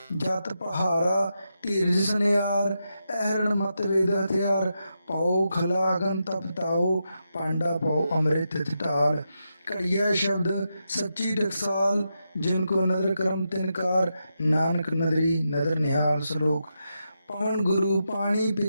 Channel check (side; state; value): both; inverted; correlation -0.86